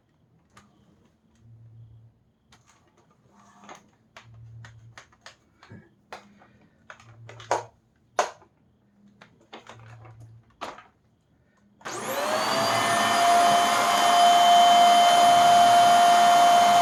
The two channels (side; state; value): both; identical; correlation 1.00